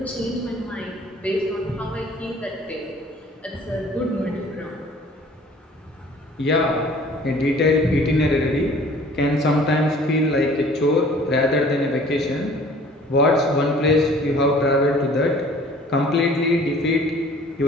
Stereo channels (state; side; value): normal; both; correlation 0.51